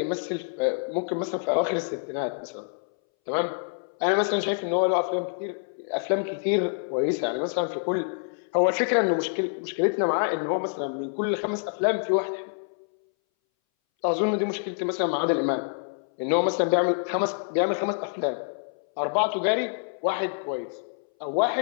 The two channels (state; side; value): silent; right; 60 dB below the other